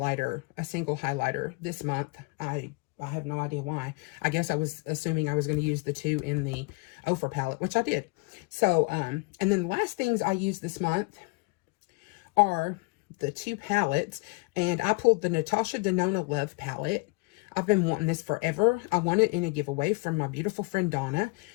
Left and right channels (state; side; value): quieter; right; 27.1 dB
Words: a single highlighter this month. I have no idea why. I guess I was assuming I was going to use the two in the Ofra palette, which I did. So, and then the last things I used this month are the two palettes. And I pulled the Natasha Denona Love palette. I've been wanting this forever. I won it in a giveaway from my beautiful friend Donna.